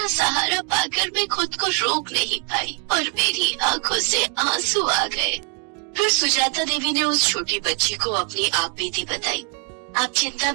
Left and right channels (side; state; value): left; quieter; 39.0 dB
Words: सहारा पाकर मैं खुद को रोक नहीं पाई और मेरी आंखों से आंसू आ गए। फिर सुजाता देवी ने उस छोटी बच्ची को अपनी आप बीती बताई। आप चिंता